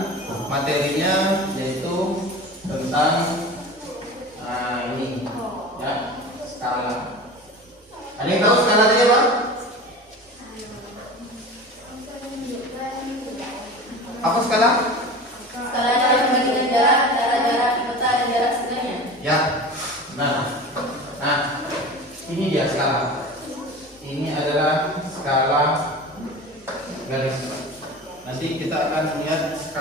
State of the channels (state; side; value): normal; both; correlation 0.34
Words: materinya yaitu tentang ini, ya, skala. Ada yang tahu skala tadi apa? Apa skala? Skala adalah perbandingan jarak antara jarak di peta dan jarak sebenarnya. Ya. Nah, ini dia skala. Ini adalah skala garis. Nanti kita akan melihat